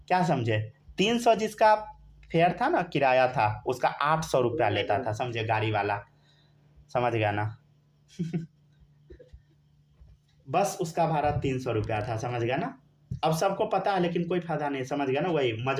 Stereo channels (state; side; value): identical; both; correlation 1.00